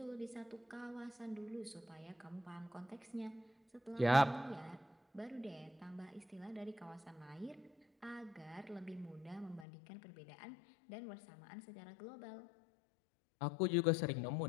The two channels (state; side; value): drops out; right; at 9.7 s